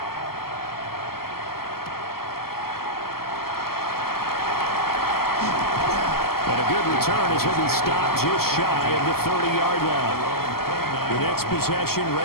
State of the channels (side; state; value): right; late; 0.94 ms